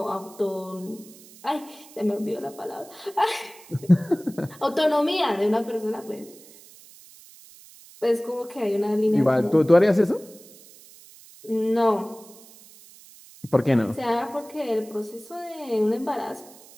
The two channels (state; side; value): noise; right; hiss, 22 dB below the sound